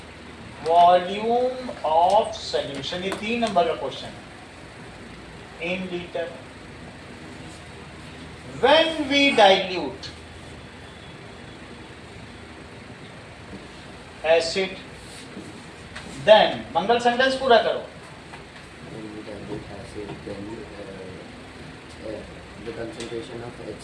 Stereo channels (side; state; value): both; identical; correlation 1.00